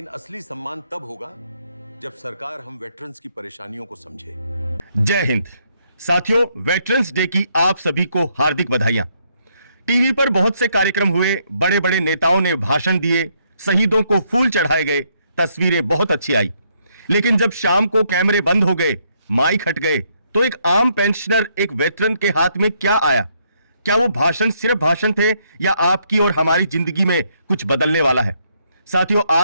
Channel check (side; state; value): both; inverted; correlation -0.73